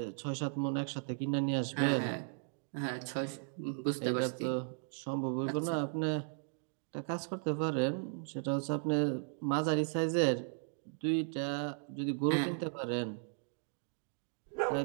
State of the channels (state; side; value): silent; left; digital silence